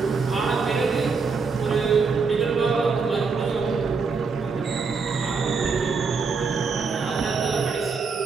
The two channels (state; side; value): quieter; left; 4.9 dB